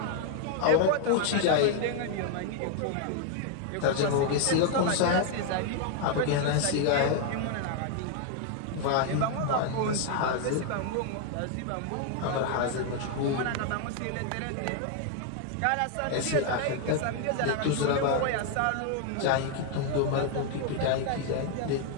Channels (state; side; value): different; both; correlation 0.00